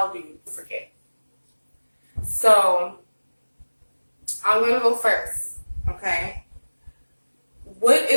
do you forgive? So I'm gonna go first. Okay. What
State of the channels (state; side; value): inverted; both; correlation -1.00